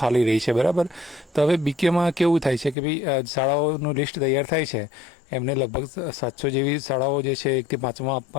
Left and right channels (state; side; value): drops out; right; at 2.8 s